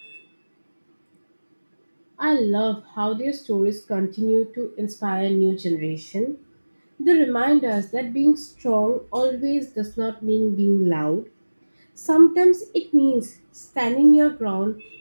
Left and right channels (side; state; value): both; inverted; correlation -1.00